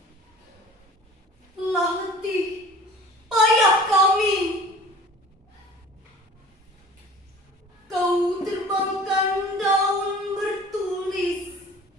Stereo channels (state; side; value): normal; both; correlation 0.45